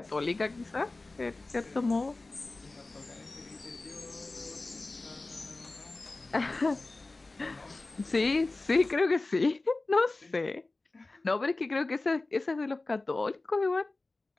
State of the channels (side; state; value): right; quieter; 3.2 dB